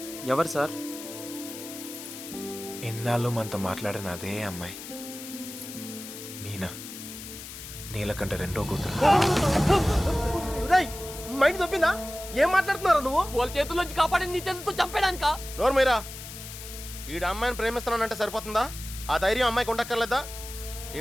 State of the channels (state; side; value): noise; left; hiss, 12 dB below the sound